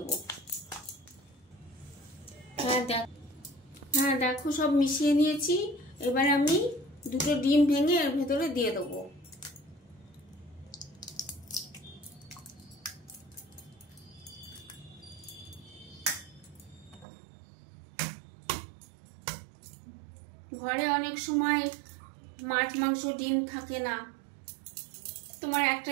হ্যাঁ দেখো সব মিশিয়ে নিয়েছি। এবার আমি দুটো ডিম ভেঙে এর ভেতরে দিয়ে দেবো। ঘরে অনেক সময় মাছ মাংস ডিম থাকে না, তোমার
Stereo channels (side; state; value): left; drops out; at 17.1 s